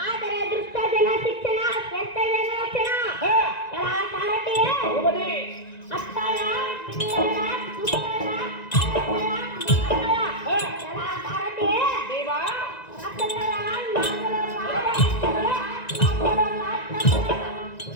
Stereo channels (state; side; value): late; right; 1.9 ms